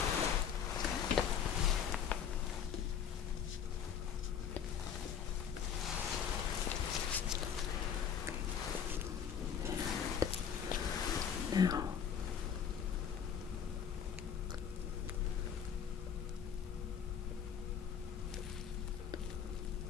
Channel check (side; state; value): right; quieter; 8.0 dB